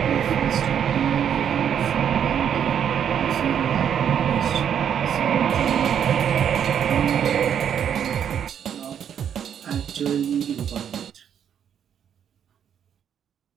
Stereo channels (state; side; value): quieter; left; 8.7 dB